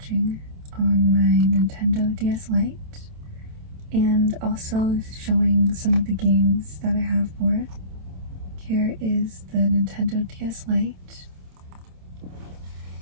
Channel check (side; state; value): left; late; 27 ms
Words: on my Nintendo DS Lite and also showing some of the games that I have for it. Here is the Nintendo DS Lite.